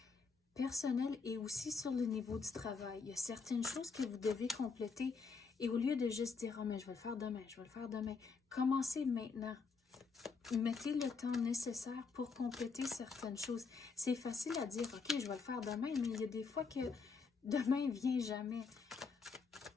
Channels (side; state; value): right; quieter; 5.0 dB